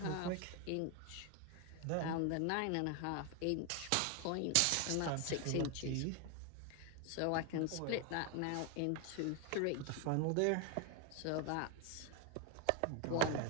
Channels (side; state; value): both; different; correlation 0.01